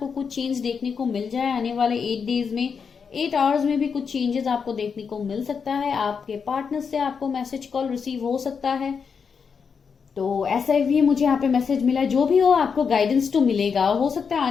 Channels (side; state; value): right; quieter; 6.1 dB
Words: कुछ चेंज देखने को मिल जाए आने वाले 8 डेज में। 8 आवर्स में भी कुछ चेंजेस आपको देखने को मिल सकता है। आपके पार्टनर से आपको मैसेज कॉल रिसीव हो सकता है। तो ऐसा भी मुझे यहाँ पे मैसेज मिला है। जो भी हो आपको गाइडेंस तो मिलेगा। हो सकता है